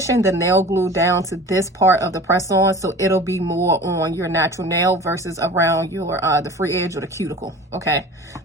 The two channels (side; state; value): both; normal; correlation 0.40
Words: the nail glue down to this part of the press-on, so it'll be more on your natural nail versus around your the free edge or the cuticle. Okay,